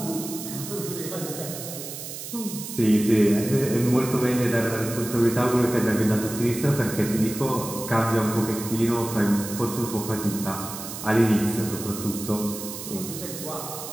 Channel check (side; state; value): right; noise; hiss, 9 dB below the sound